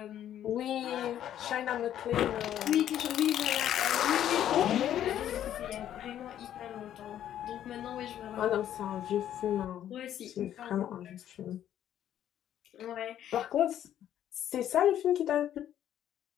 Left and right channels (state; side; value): quieter; right; 11.0 dB